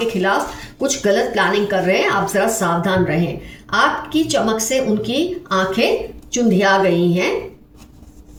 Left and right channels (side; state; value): both; identical; correlation 1.00